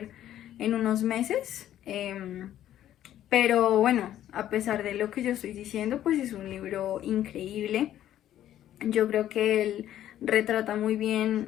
en unos meses. Pero bueno, a pesar de lo que yo estoy diciendo, pues es un libro increíble. Yo creo que él retrata muy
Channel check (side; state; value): right; quieter; 11.9 dB